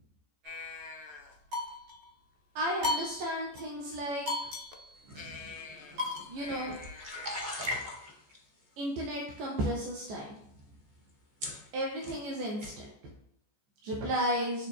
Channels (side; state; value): left; late; 14 ms